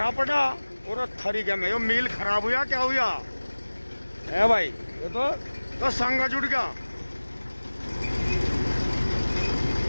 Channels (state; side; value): inverted; both; correlation -1.00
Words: पड़ा और थरी के में। यो मील खराब हुआ क्या हुआ है भाई? ये तो संगा जुड़ गया।